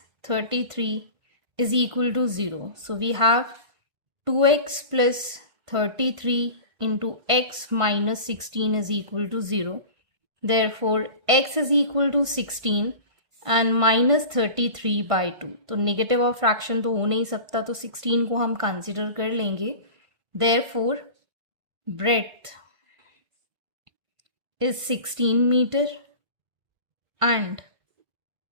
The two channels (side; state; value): left; late; 1.5 ms